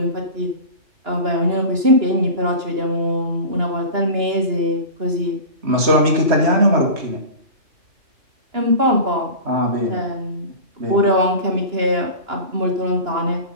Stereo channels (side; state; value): left; late; 2.9 ms